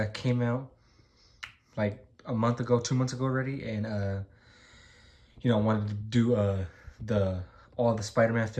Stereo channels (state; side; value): identical; both; correlation 1.00